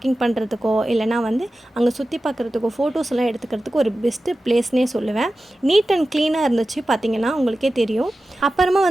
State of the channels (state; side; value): normal; both; correlation 0.94